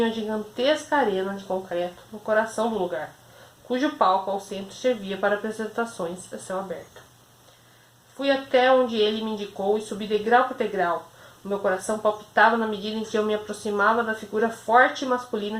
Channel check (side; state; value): both; identical; correlation 1.00